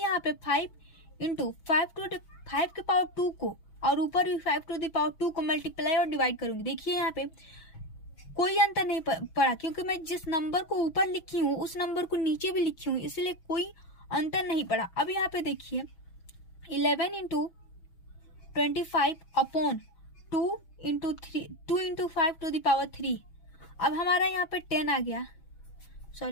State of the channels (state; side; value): late; right; 6.1 ms